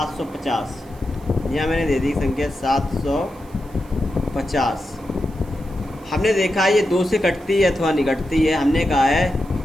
यहाँ मैंने दे दी संख्या 750। हमने देखा ये 2 से कटती है अथवा नहीं कटती है। हमने कहा है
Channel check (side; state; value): right; noise; hiss, 28 dB below the sound